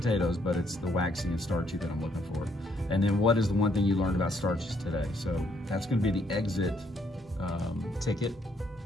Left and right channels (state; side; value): normal; both; correlation 0.70